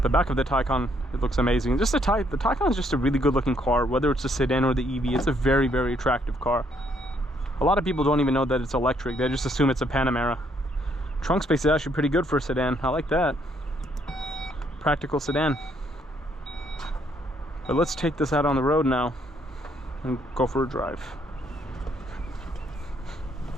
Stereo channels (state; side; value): normal; both; correlation 0.70